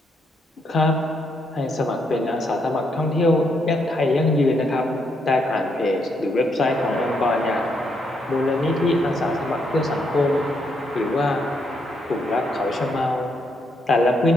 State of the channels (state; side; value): normal; both; correlation 0.76